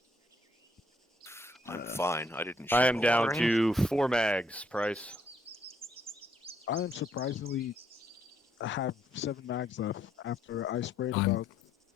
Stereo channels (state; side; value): normal; both; correlation 0.70